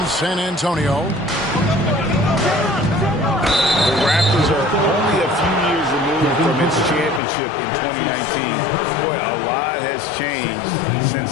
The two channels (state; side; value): drops out; right; at 7.2 s